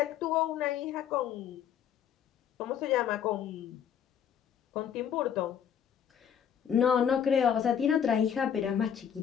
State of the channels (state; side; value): quieter; right; 8.6 dB